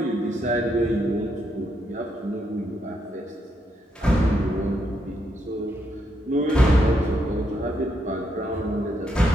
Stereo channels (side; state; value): both; normal; correlation 0.78